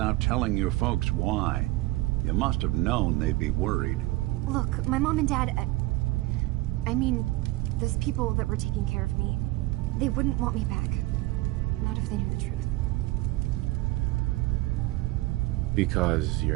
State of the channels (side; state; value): left; quieter; 19.7 dB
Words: telling your folks why. You must have known they'd be worried. Look, my mom and dad... I mean, those people that were taking care of me, they wouldn't want me back. Not if they knew the truth. Because